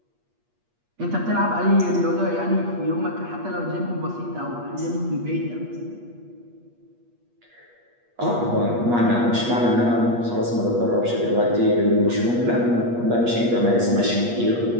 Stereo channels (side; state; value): left; late; 8.4 ms